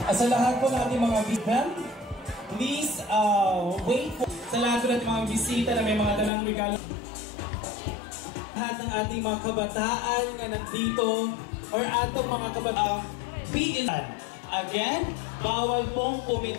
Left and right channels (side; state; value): right; drops out; at 6.3 s